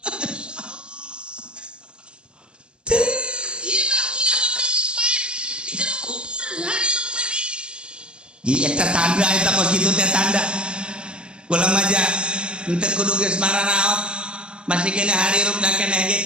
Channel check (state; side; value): late; left; 0.053 ms